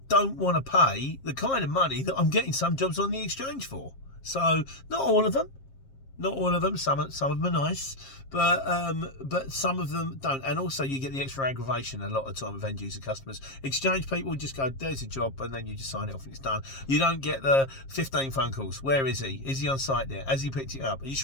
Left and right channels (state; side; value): late; right; 7.4 ms